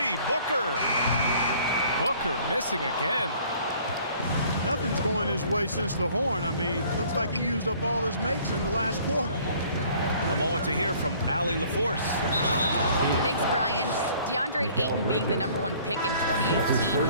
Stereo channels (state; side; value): inverted; both; correlation -0.55